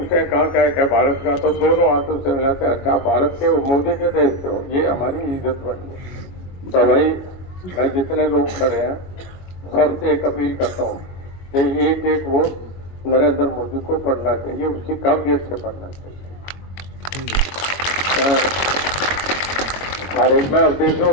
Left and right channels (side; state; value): right; late; 22 ms